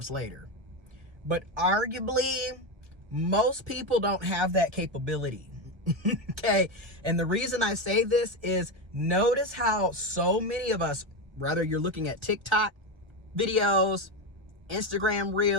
later. But arguably, most people don't have that capability. Okay. And the reason I say this is, notice how so many of us, whether you're looking at TikTok videos, Instagram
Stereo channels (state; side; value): late; left; 1.1 ms